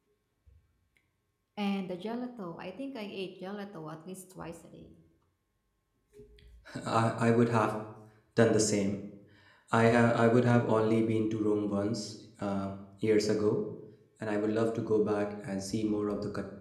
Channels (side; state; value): both; identical; correlation 1.00